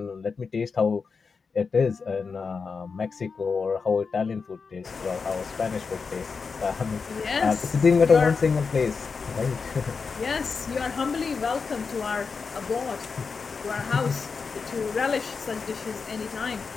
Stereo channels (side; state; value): right; quieter; 5.1 dB